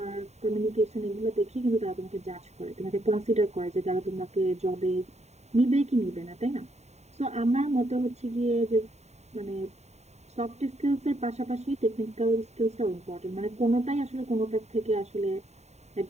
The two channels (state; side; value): late; left; 0.32 ms